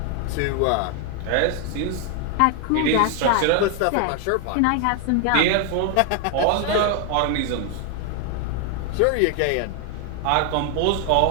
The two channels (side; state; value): both; different; correlation 0.00